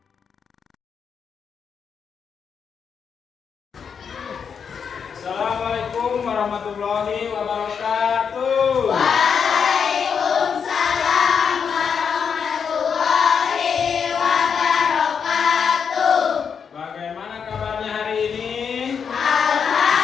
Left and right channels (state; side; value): quieter; right; 6.7 dB